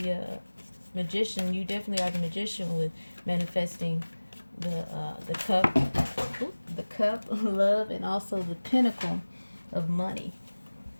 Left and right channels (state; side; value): inverted; both; correlation -1.00